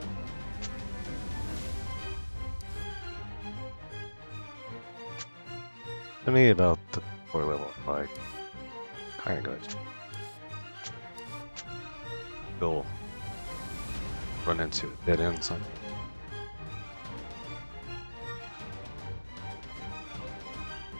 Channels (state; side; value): inverted; both; correlation -1.00